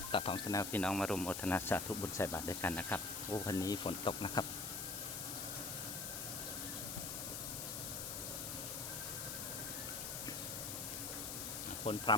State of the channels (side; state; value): left; noise; hiss, 4 dB below the sound